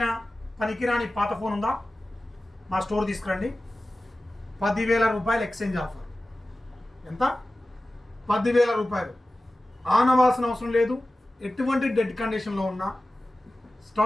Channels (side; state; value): both; normal; correlation 0.95